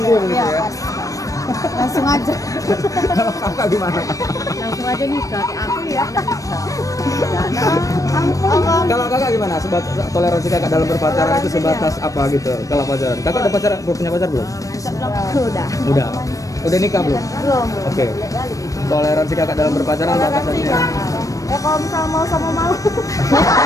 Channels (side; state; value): right; late; 0.16 ms